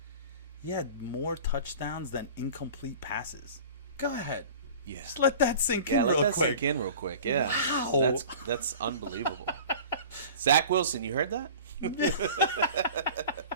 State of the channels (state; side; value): inverted; both; correlation -0.41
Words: He had more touchdowns than incomplete passes. Go ahead. Yeah. Just let that sink in Yeah, let real that quick. sink in real quick. Yeah. Wow. That's unbelievable. Zach Wilson, you heard that?